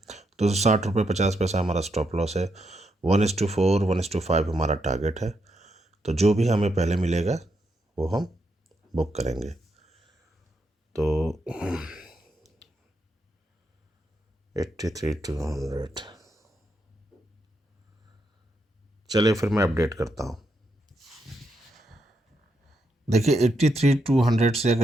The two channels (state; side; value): normal; both; correlation 0.80